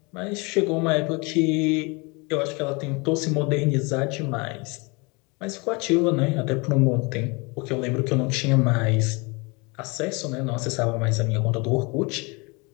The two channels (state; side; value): quieter; right; 28.6 dB